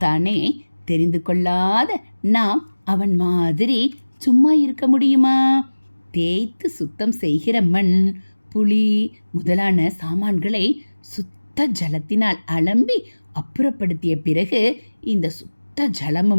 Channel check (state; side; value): inverted; both; correlation -1.00